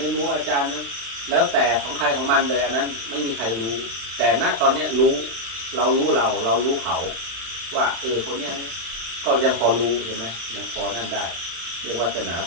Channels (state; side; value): late; left; 35 ms